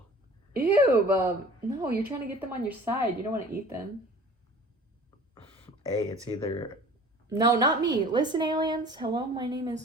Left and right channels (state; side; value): normal; both; correlation 0.45